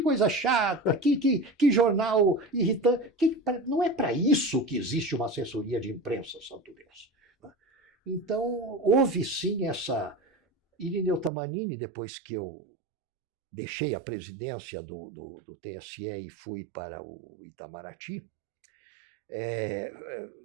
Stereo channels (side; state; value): left; drops out; at 11.3 s